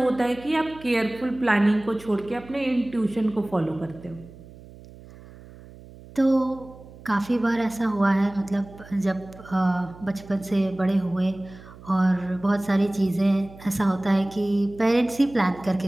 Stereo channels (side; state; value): right; noise; hum, 19 dB below the sound